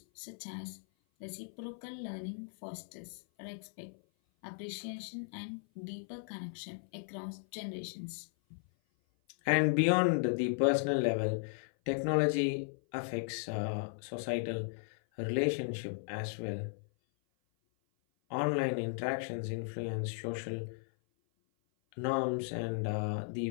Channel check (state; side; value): silent; right; 54 dB below the other